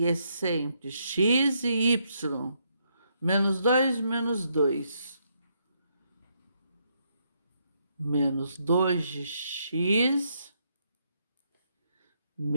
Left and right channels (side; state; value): both; inverted; correlation -0.76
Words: é sempre x e y. Menos 2, menos 2. Menos 2 de x,